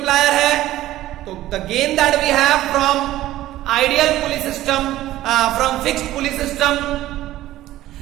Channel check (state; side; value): quieter; left; 14.9 dB